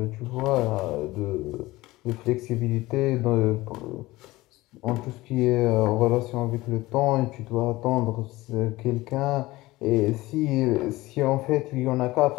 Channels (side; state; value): right; quieter; 19.1 dB